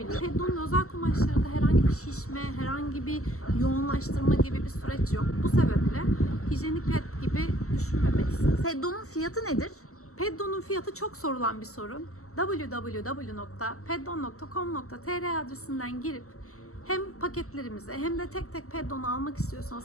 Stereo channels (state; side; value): late; right; 0.64 ms